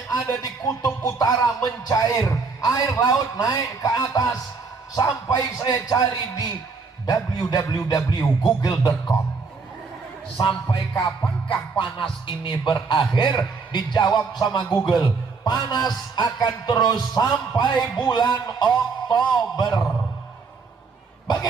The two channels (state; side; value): quieter; left; 4.7 dB